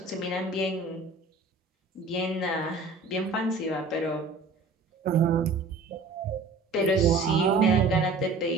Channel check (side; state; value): left; quieter; 3.7 dB